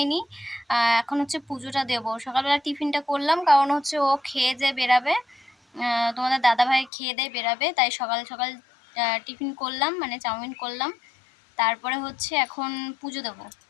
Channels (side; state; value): right; drops out; at 6.9 s